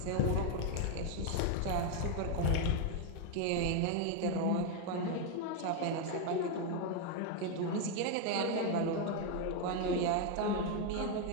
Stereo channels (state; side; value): different; both; correlation 0.01